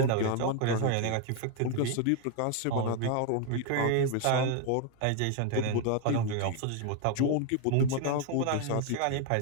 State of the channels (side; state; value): both; different; correlation 0.01